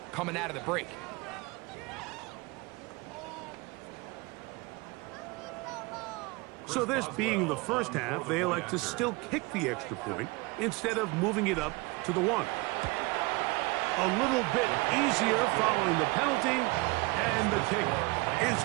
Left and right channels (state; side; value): quieter; left; 24.8 dB